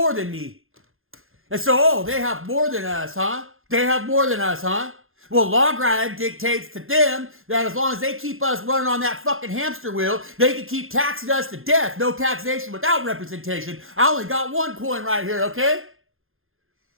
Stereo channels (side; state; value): left; late; 0.60 ms